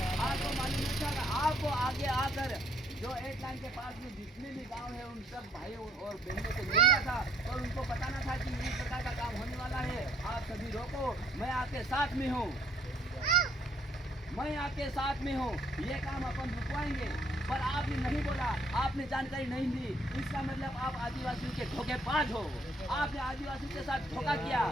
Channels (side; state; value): both; normal; correlation 0.66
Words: आपको मालूम नहीं था? आपको आगे आकर जो 8 लाइन के पास में जितने भी गांव है उन सब भाइयों और बहनों से मिलना था और उनको बताना था कि इस प्रकार का काम होने वाला है, आप सभी रोको, मैं आपके साथ में हूँ, मैं आपके साथ में हूँ, ये काम अपन रुकवाएंगे। पर आपने नहीं बोला, आपने जानकारी नहीं दी, इसका मतलब आप आदिवासियों के धोखेबाज हो। आपने आदिवासियों के साथ धोखा किया,